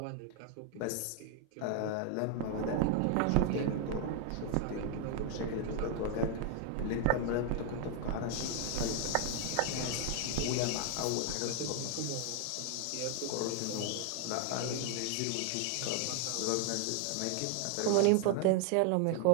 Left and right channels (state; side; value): different; both; correlation 0.00